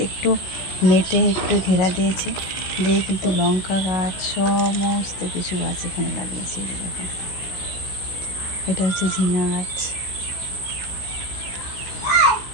একটু নেটে একটু ঘেরা দিয়েছে, দিয়ে কিন্তু লঙ্কা গাছ সমস্ত কিছু গাছ এখানে লাগিয়েছে। দেখো, এটা হচ্ছে ঝিঙা গাছ,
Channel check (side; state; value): right; late; 16 ms